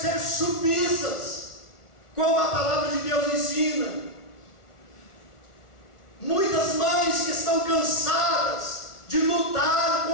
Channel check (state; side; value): late; right; 1.4 ms